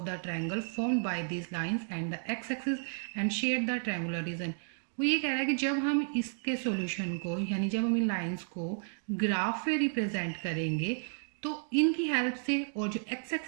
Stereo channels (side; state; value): left; silent; digital silence